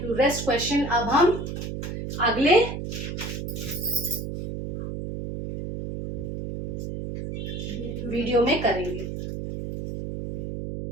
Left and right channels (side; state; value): right; noise; hum, 6 dB below the sound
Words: you. रेस्ट क्वेश्चन अब हम अगले वीडियो में करेंगे।